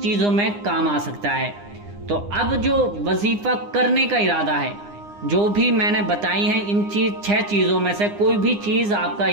چیزوں میں کام آ سکتا ہے۔ تو اب جو وظیفہ کرنے کا ارادہ ہے، جو بھی میں نے بتائی ہیں ان 6 چیزوں میں سے کوئی بھی چیز آپ کا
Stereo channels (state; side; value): late; left; 9.8 ms